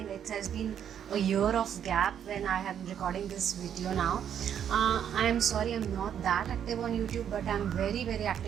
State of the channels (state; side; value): quieter; left; 9.1 dB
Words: it has been a year of gap when I am recording this video now. I'm sorry I'm not that active on YouTube, but I'm very